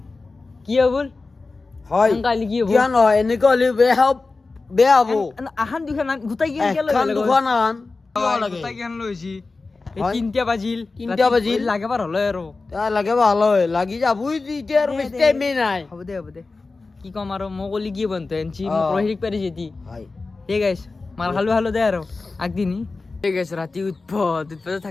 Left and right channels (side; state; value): right; quieter; 3.8 dB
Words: কি হ'ব হয় কালি কি হ'ব কিয় নহয় এনেকৈ হ'লে বেয়া হ'ব আহান দুখান গোটাই কি দুখন গোটাই কেন লৈছি তিনটা বাজিল লাগে পাৰ হলে আৰু লাগে ভাল হয় লাগি যাবই এতিয়া আৰু বেছি টাইমে নাই হ'ব দে কি কম আৰু মই কলি কি বন্ধু এনছি মোক ৰহিক পাৰিছে দি ঠিক আছে মাৰ খালো দে আৰু আগদিনি ঠিক আছে ৰাতি উৎপত